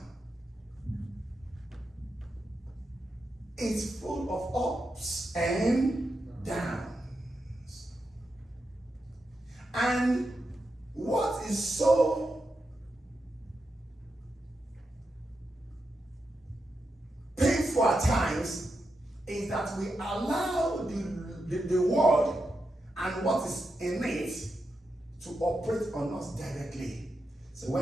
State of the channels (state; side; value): normal; both; correlation 0.87